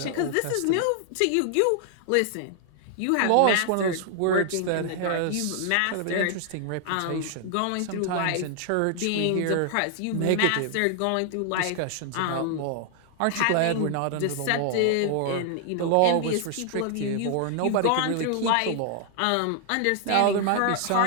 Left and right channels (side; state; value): both; different; correlation 0.00